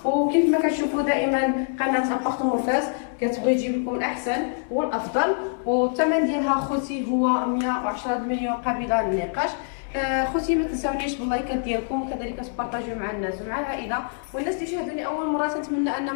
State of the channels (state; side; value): silent; right; 62 dB below the other